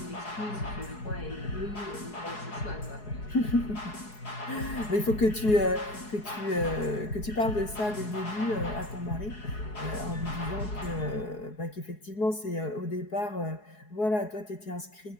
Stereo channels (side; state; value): right; late; 4.7 ms